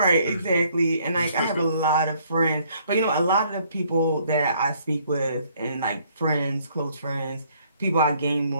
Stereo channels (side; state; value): both; inverted; correlation -0.64